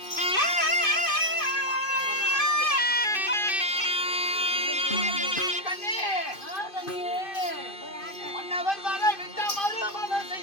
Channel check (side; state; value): right; late; 2.5 ms